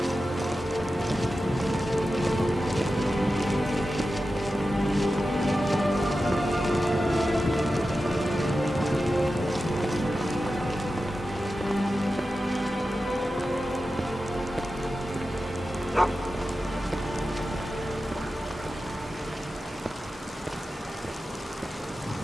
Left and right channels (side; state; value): both; normal; correlation 0.92